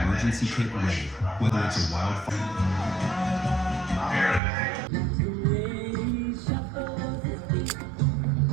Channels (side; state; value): left; drops out; at 4.4 s